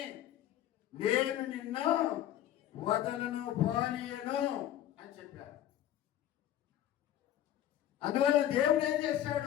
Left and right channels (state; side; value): quieter; right; 11.9 dB